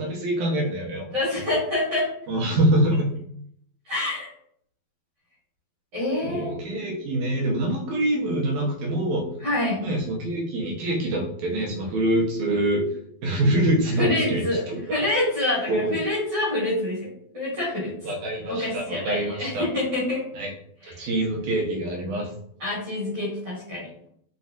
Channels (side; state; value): left; late; 12 ms